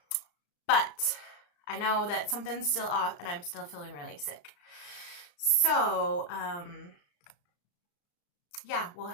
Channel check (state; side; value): late; right; 34 ms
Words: But I know that something's still off and I'm still feeling really sick. So, yeah, we'll